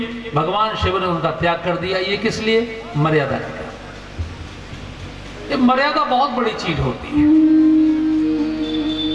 भगवान शिव ने उनका त्याग कर दिया। ये किस लिए? मर्यादा के लिए। ये मर्यादा बहुत बड़ी चीज होती है।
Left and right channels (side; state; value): both; identical; correlation 1.00